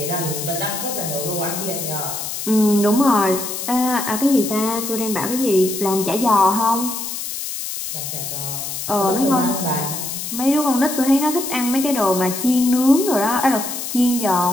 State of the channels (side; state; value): left; noise; hiss, 6 dB below the sound